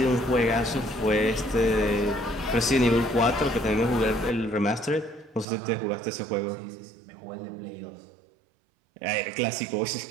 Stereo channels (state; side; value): drops out; left; at 5.5 s